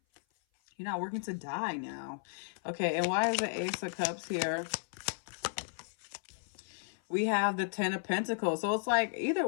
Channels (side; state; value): right; silent; 55 dB below the other